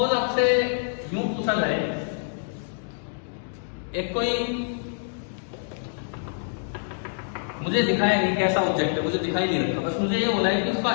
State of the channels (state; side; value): silent; right; digital silence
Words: आपसे यूं पूछा जाए, एक कोई मुझे दिखाया नहीं कैसा ऑब्जेक्ट है, मुझे दिखाई नहीं रखा, बस मुझे ये बोला है कि उसका